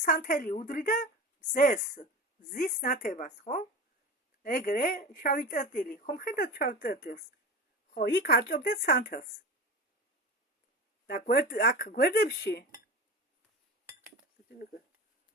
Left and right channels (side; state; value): both; normal; correlation 0.30